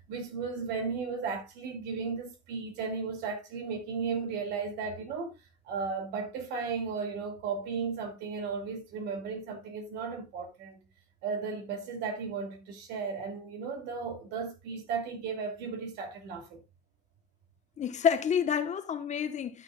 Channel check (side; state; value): both; normal; correlation 0.03